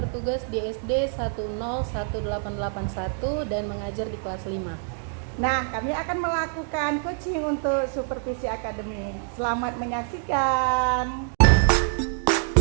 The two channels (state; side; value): silent; left; 59 dB below the other